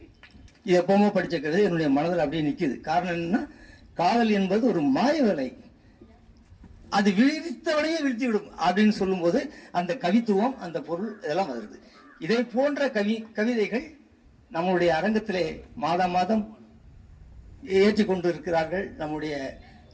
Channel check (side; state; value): both; identical; correlation 1.00